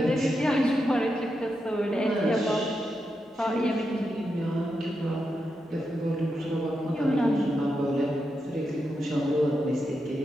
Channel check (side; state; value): both; normal; correlation 0.86